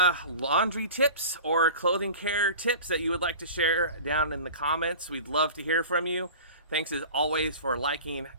laundry tips or clothing care tips that you would like to share down in the comments, we'd love to hear from you. Thanks as always for liking,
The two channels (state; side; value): inverted; both; correlation -0.38